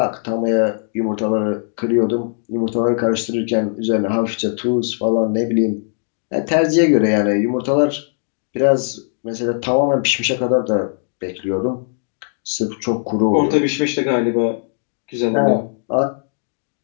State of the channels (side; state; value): right; silent; digital silence